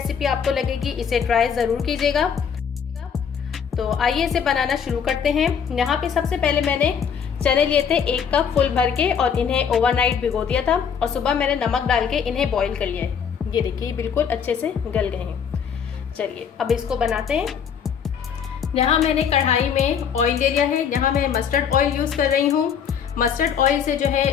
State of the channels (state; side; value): quieter; right; 7.4 dB